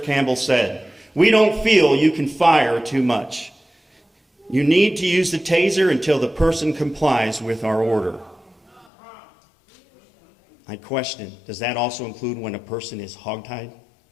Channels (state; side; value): drops out; right; at 8.8 s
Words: Campbell said, "We don't feel you can fire too much. You need to use the taser until the person complies with our order." I question, does that also include when a person is hogtied?